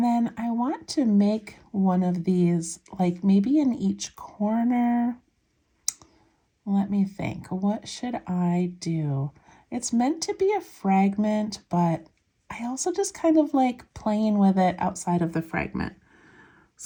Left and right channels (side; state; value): both; identical; correlation 1.00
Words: then I want to make one of these, like maybe in each corner. Let me think, what should I do? It's meant to be a fragment, but I also just kind of like playing with it outside of the fragment.